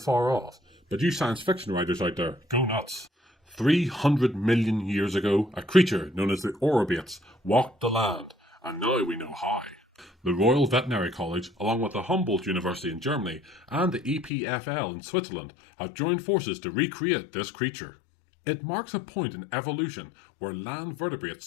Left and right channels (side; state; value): right; drops out; at 14.3 s